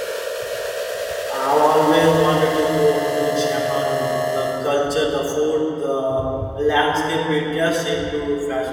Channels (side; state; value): both; identical; correlation 1.00